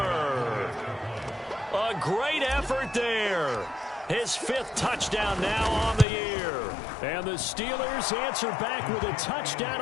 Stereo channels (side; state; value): right; drops out; at 6.1 s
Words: A great effort there. His 5th touchdown now on the year. And the Steelers answer back with a touchdown